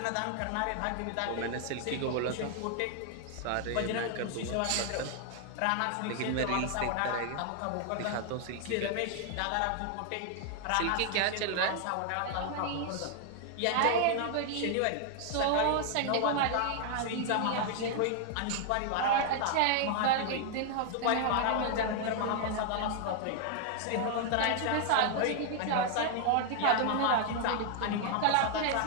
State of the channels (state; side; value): different; both; correlation 0.00